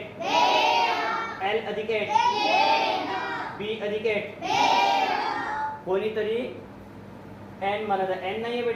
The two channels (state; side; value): identical; both; correlation 1.00